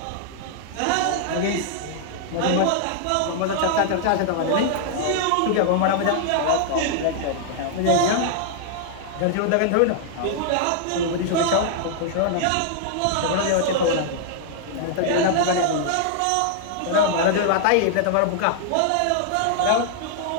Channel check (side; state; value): both; different; correlation -0.01